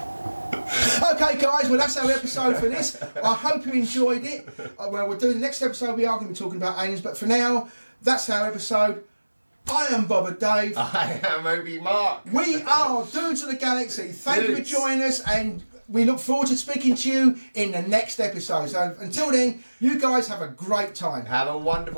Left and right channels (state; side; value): inverted; both; correlation -1.00